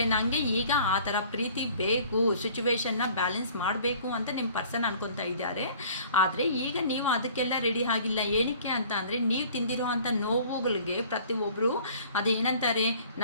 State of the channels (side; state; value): both; inverted; correlation -0.51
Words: ನನಗೆ ಈಗ ಆ ಥರ ಪ್ರೀತಿ ಬೇಕು, ಸಿಚುವೇಶನ್ನ ಬ್ಯಾಲೆನ್ಸ್ ಮಾಡಬೇಕು ಅಂತ ನಿಮ್ಮ ಪರ್ಸನ್ ಅನ್ಕೊತಾ ಇದ್ದಾರೆ. ಆದರೆ ಈಗ ನೀವು ಅದಕ್ಕೆಲ್ಲ ರೆಡಿ ಆಗಿಲ್ಲ. ಏನಕ್ಕೆ ಅಂತ ಅಂದರೆ ನೀವು ತಿಂದಿರೋ ಅಂಥ ನೋವುಗಳಿಗೆ ಪ್ರತಿಯೊಬ್ಬರು ಅದೇನಂತಾರೆ,